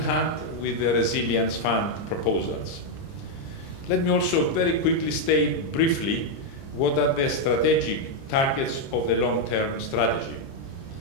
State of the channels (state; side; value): late; right; 30 ms